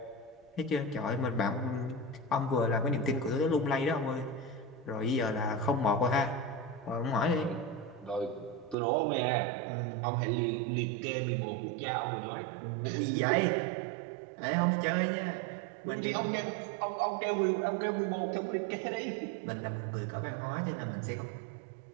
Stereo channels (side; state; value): left; drops out; at 8.8 s